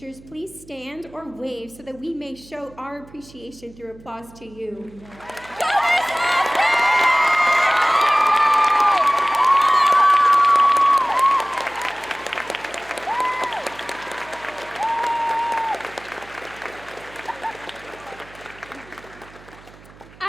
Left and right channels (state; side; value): noise; right; hum, 23 dB below the sound